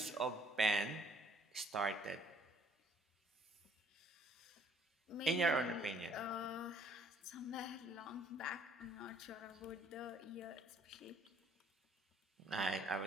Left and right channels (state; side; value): normal; both; correlation 0.62